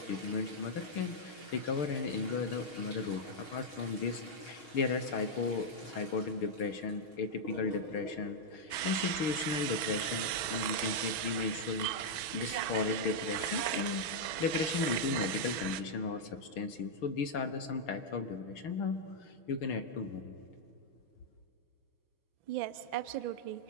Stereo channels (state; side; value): late; right; 6.2 ms